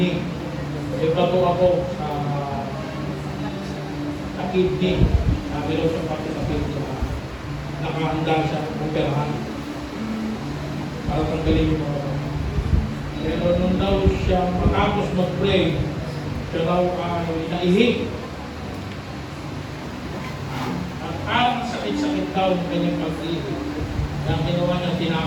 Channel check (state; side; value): identical; both; correlation 1.00